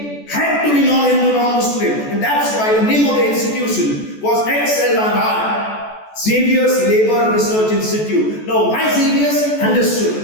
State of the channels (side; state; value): right; late; 14 ms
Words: had to be non-Hindu, non-Muslim, and that's why the name of the institution was XLRI. Xavier's Labour Research Institute. Now, why Xavier's?